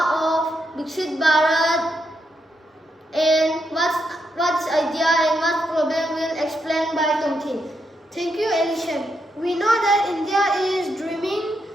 of Viksit Bharat and what's idea and what problem will explain by Tomtin. Thank you, Elishan. We know that India is dreaming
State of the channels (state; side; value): normal; both; correlation 0.81